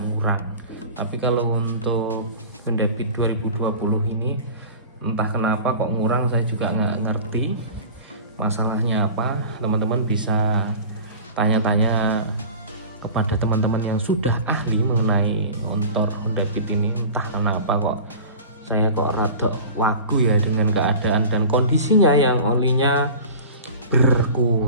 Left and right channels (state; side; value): inverted; both; correlation -0.37